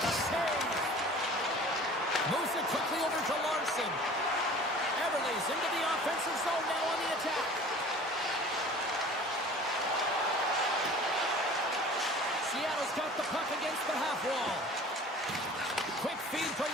save. Moves it quickly over to Larson. Everly's into the offensive zone now on the attack. Seattle's got the puck against the half wall. Quick feed to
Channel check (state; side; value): normal; both; correlation 0.44